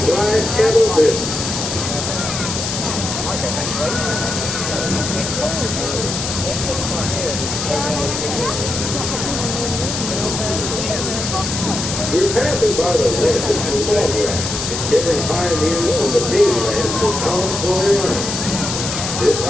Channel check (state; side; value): noise; left; hiss, 4 dB below the sound